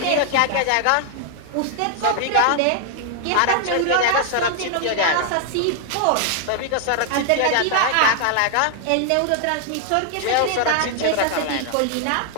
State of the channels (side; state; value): both; different; correlation 0.00